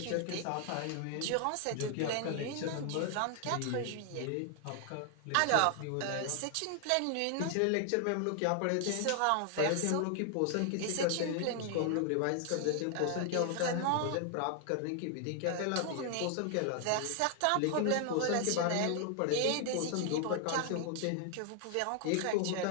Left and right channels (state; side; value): different; both; correlation 0.00